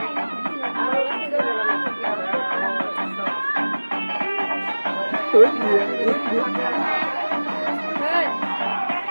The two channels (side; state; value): both; inverted; correlation -1.00